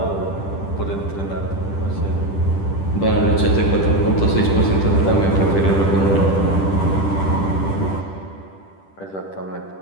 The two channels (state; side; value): late; right; 10 ms